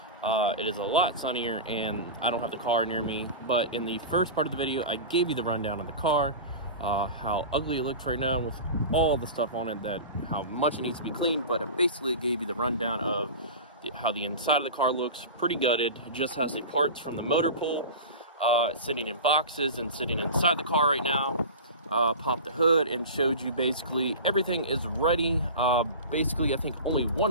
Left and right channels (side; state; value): both; inverted; correlation -0.30